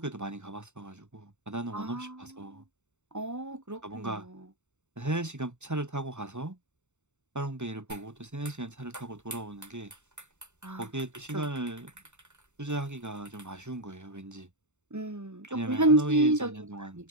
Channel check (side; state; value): left; late; 0.84 ms